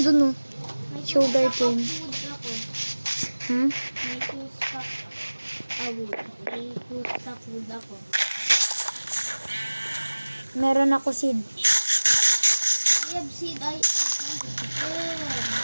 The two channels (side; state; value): both; inverted; correlation -1.00